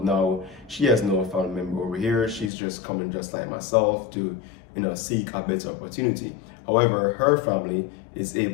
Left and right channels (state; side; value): drops out; right; at 2.5 s